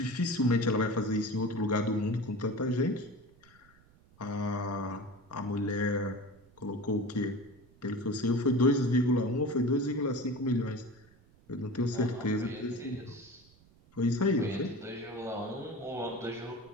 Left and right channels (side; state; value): right; noise; rumble, 28 dB below the sound